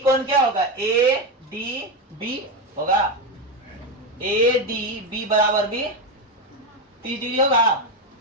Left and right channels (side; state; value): both; normal; correlation 0.11